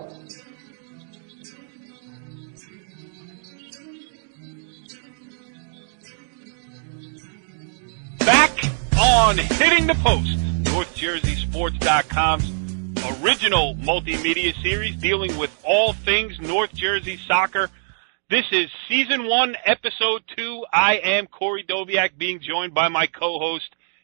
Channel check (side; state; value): left; silent; digital silence